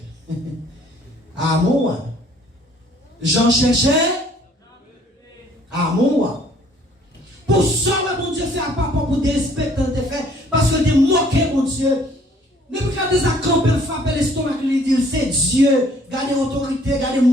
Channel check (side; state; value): both; normal; correlation 0.59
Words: Ah, moi. J'en cherchais. Ah, moi. Pour ça, mon Dieu, fait à papa pour dérespecter quand tu fait, parce que tu moqué, mon Dieu. Ne pas garder ça camper, frapper l'estomac, lui dire c'est Dieu, garder l'autorité, garder le